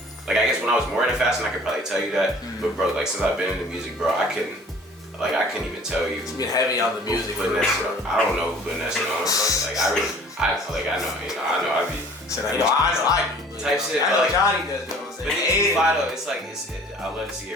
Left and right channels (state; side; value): normal; both; correlation 0.50